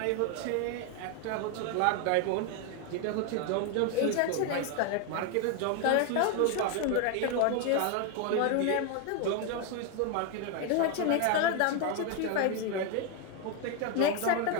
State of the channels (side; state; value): both; different; correlation 0.01